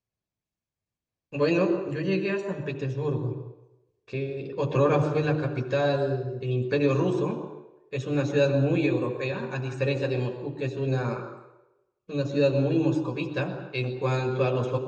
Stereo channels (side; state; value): both; identical; correlation 1.00